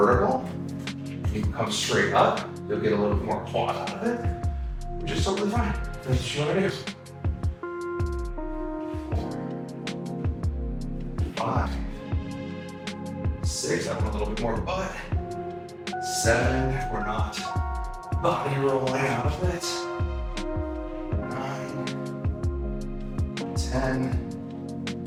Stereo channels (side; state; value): both; identical; correlation 1.00